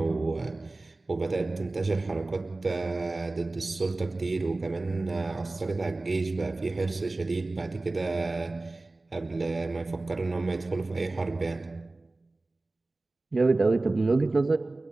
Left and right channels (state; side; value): quieter; left; 3.2 dB